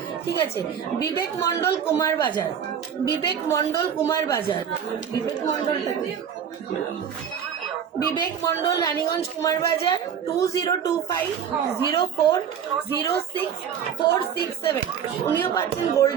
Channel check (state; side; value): quieter; left; 8.1 dB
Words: ঠিক আছে। বিবেক মন্ডল কুমারবাজার, বিবেক মন্ডল রানীগঞ্জ কুমারবাজার, 2025040647, উনিও পাচ্ছেন